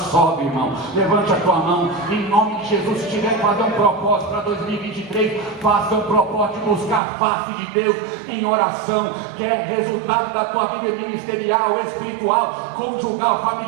irmão. Levante a tua mão, em nome de Jesus. Se tiver que fazer um propósito para 2023, faça um propósito de buscar a face de Deus em oração, que é resultado da tua vida ministerial, espiritual, conjugal,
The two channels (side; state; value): left; drops out; at 7.0 s